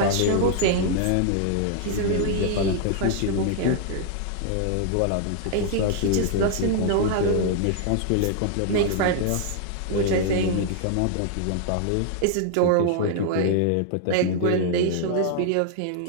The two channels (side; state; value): both; different; correlation 0.00